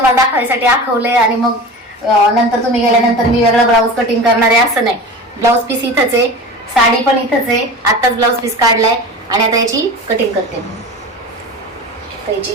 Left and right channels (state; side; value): normal; both; correlation 0.33